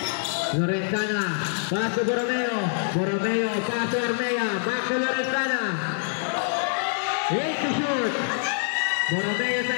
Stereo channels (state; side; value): silent; right; digital silence